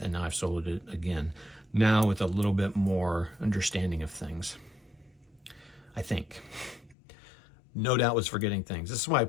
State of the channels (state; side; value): drops out; right; at 7.0 s